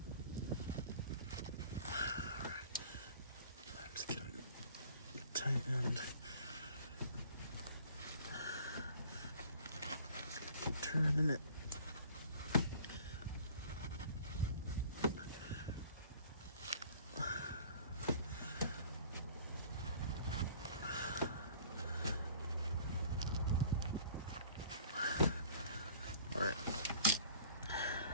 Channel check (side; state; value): both; inverted; correlation -0.50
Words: Tightened. Keep turning it. All right.